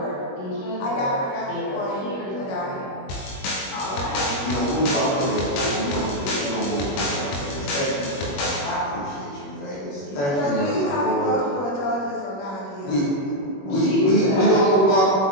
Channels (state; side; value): late; right; 21 ms